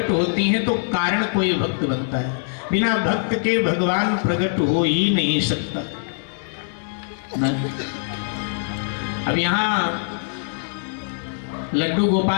होती हैं तो कारण कोई भक्त बनता है, बिना भक्त के भगवान प्रकट हो ही नहीं सकता। अब यहां लड्डू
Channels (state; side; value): silent; right; digital silence